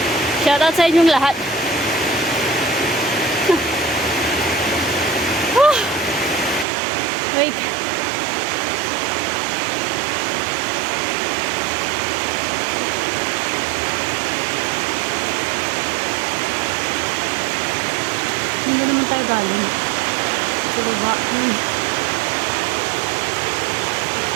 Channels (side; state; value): left; drops out; at 6.7 s